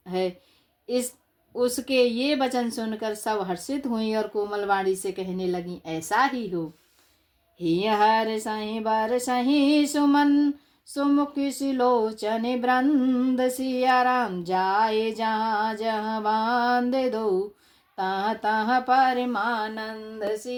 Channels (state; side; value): identical; both; correlation 1.00